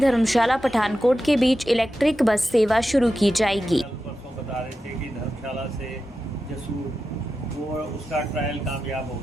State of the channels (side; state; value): both; normal; correlation 0.91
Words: पठानकोट के बीच इलेक्ट्रिक बस सेवा शुरू की जाएगी। परसों बता रहे थे कि धर्मशाला से जसूर वो उसका ट्रायल कामयाब हो